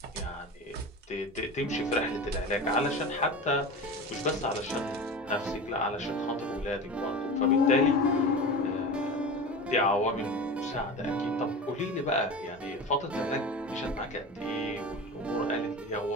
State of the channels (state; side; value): normal; both; correlation 0.30